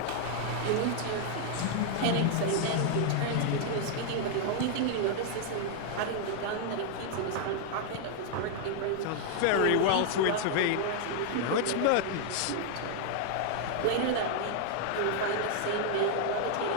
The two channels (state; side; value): different; both; correlation 0.00